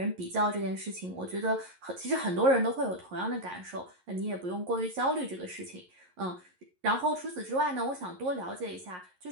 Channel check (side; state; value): left; late; 11 ms